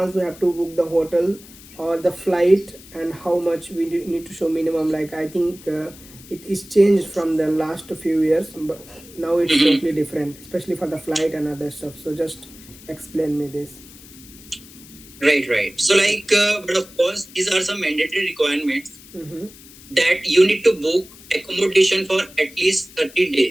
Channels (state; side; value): noise; left; hiss, 20 dB below the sound